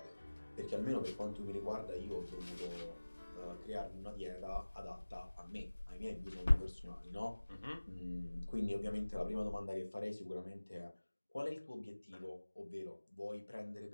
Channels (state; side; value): inverted; both; correlation -1.00